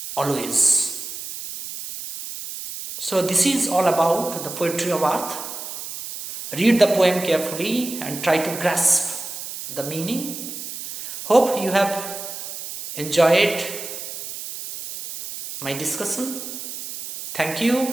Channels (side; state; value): right; noise; hiss, 9 dB below the sound